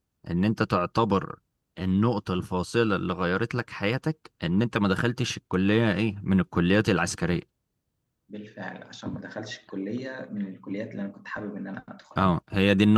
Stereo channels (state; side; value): identical; both; correlation 1.00